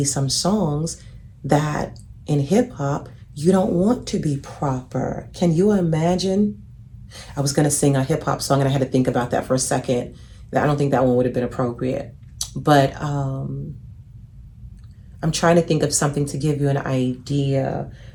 some songs that in hip hop, you don't want to be proper. Can you imagine? I was going to sing a hip hop song and I had to think about that for a second. I don't think that one would have been appropriate. But I'm trying to think of something to give you an idea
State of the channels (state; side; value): identical; both; correlation 1.00